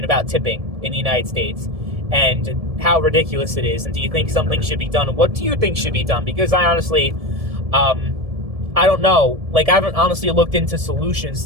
about tipping in the United States and how ridiculous it is. And do you think something should be done? And what do you think should be done? Because I honestly, I don't know. Like, I haven't honestly looked into solutions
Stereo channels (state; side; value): late; left; 1.7 ms